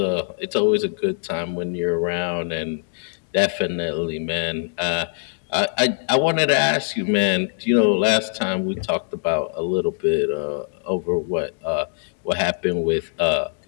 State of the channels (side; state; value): right; silent; digital silence